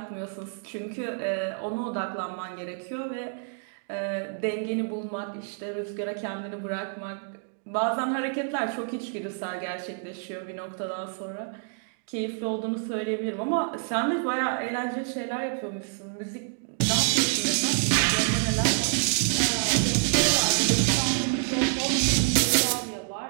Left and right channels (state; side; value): silent; left; 60 dB below the other